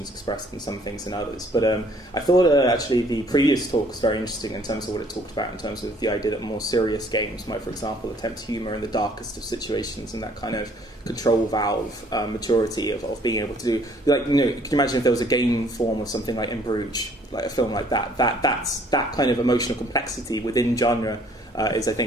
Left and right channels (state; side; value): normal; both; correlation 0.60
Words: expressed in some things than others. But I thought actually the previous talk was very interesting in terms of what it talked about, in terms of the idea that more serious games might, for example, attempt humour in the darkest of situations, and that kind of control valve maturity of being able to do, like, could you imagine if there was a game form of something like In Bruges, like a film like that's that kind of emotional complexity within genre is, I